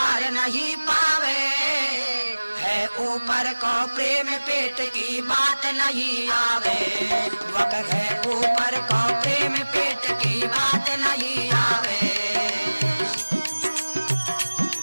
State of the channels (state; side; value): inverted; both; correlation -1.00